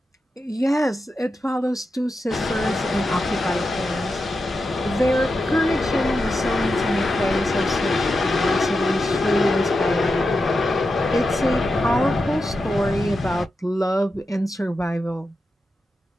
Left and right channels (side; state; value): both; normal; correlation 0.89